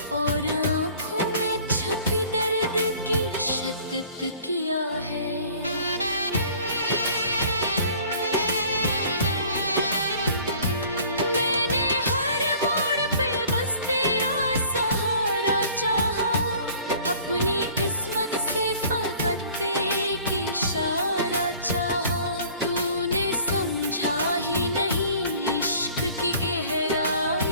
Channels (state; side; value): inverted; both; correlation -0.50